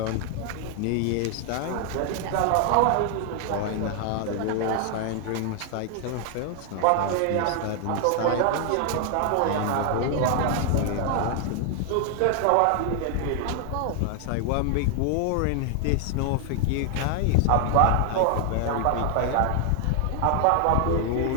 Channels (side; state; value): both; different; correlation 0.00